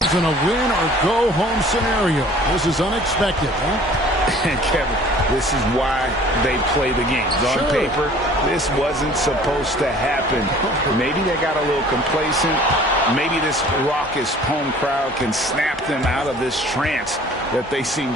a win or go home scenario. This is unexpected, huh? And Kevin, this is why they play the games. On paper, this wasn't supposed to happen. Maybe they got a little complacent. Maybe this raucous home crowd can snap them out of this trance that they seem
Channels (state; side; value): normal; both; correlation 0.50